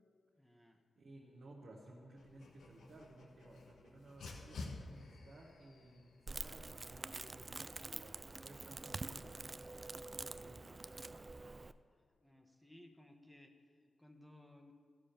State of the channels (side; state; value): both; normal; correlation 0.93